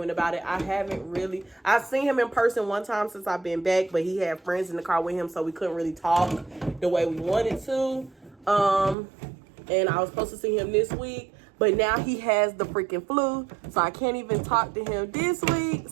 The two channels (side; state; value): left; drops out; at 9.0 s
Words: about it. I've seen him in person one time since I've been back, but he had friends in the car with him, so we couldn't really talk the way we wanted to. And I was supposed to see him this week, but now he has the freaking flu, so I can't even talk to him this week.